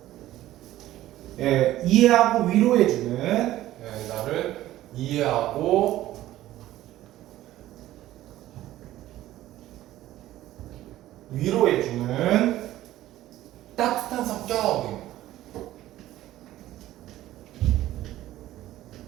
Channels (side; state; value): left; quieter; 14.6 dB